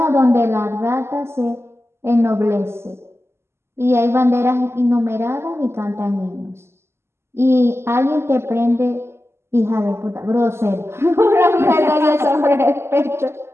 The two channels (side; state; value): left; late; 0.12 ms